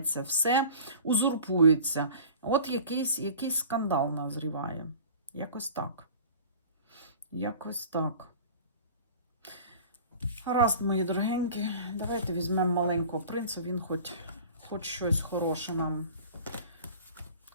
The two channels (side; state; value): both; inverted; correlation -0.42